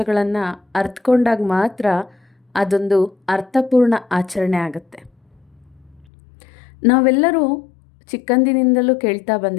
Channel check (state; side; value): drops out; right; at 6.1 s